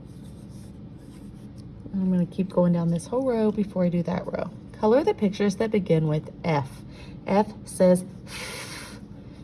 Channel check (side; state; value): both; identical; correlation 1.00